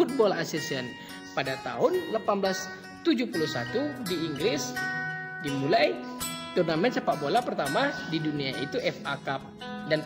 Association. Pada tahun 1871 di Inggris dimulai turnamen sepak bola pertama di dunia, itu FA Cup, dan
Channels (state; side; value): identical; both; correlation 1.00